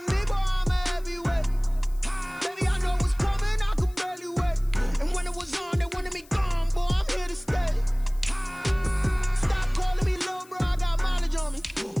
me, boy, I'm a heavyweight. Baby, I know what's coming, I could barely wait. And when it was on, they wanted me gone, boy, I'm here to stay. Stop calling me little bro, I got mileage on me.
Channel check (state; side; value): noise; left; hiss, 25 dB below the sound